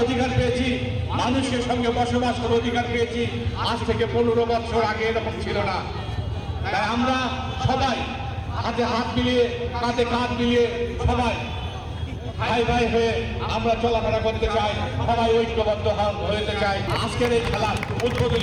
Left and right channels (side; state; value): both; identical; correlation 1.00